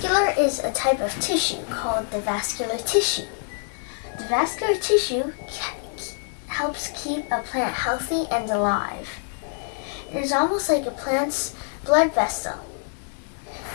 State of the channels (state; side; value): silent; right; 62 dB below the other